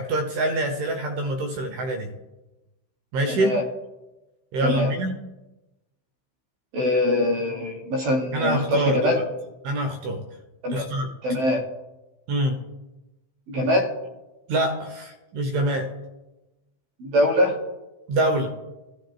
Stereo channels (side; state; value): left; late; 15 ms